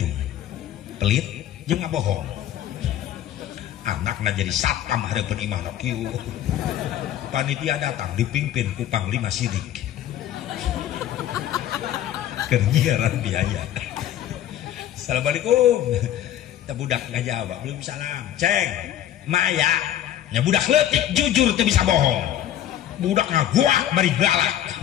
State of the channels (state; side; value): quieter; right; 11.7 dB